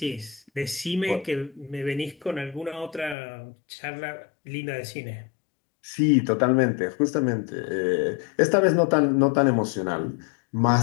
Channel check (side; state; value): right; drops out; at 3.2 s